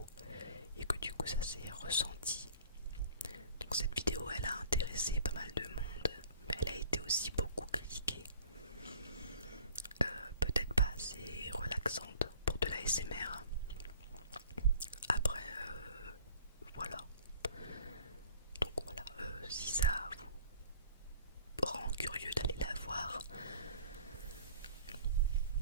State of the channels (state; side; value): inverted; both; correlation -0.49